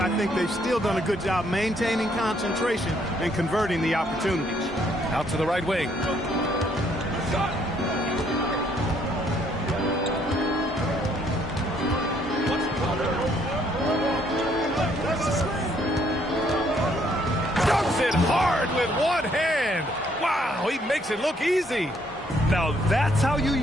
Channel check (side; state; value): both; normal; correlation 0.68